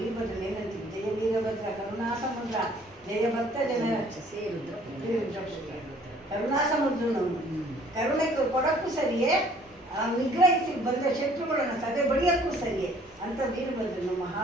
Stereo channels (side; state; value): both; normal; correlation 0.57